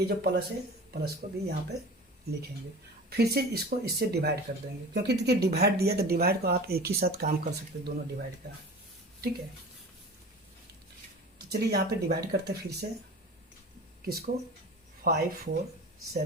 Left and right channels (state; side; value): normal; both; correlation 0.37